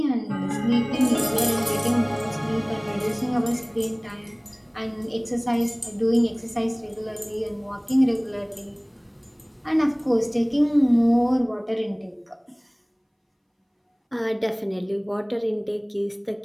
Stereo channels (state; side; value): identical; both; correlation 1.00